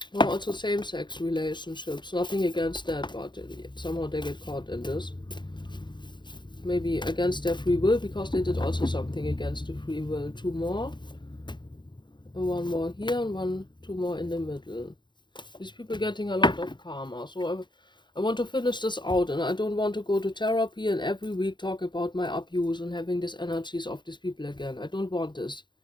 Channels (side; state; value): right; late; 0.22 ms